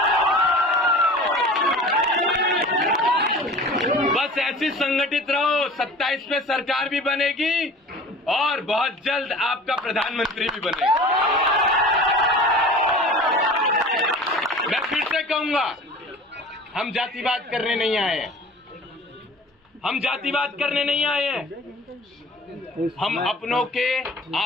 बस ऐसी संगठित रहो, 27 में सरकार भी बनेगी और बहुत जल्द आपका प्रधानमंत्री भी बनेगा। मैं फिर से कहूंगा, हम जातिवाद करने नहीं आए हैं, हम जातिवाद करने नहीं आए हैं, हम अपनों के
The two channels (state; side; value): normal; both; correlation 0.41